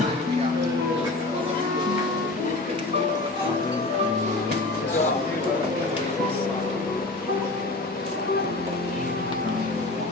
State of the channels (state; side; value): quieter; right; 3.0 dB